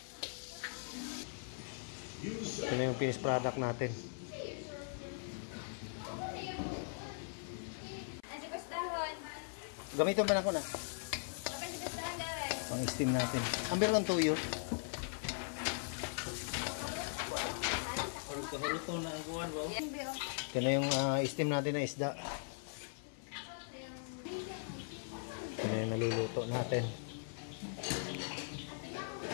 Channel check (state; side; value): silent; right; 51 dB below the other